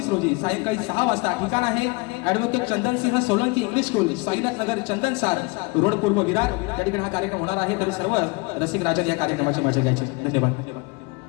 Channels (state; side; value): quieter; right; 26.4 dB